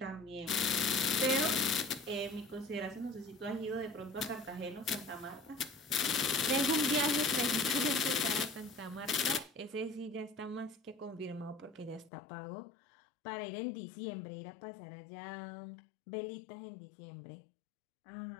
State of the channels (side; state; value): right; drops out; at 12.1 s